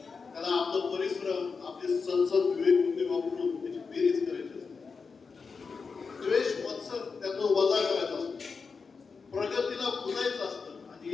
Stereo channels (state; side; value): quieter; right; 5.0 dB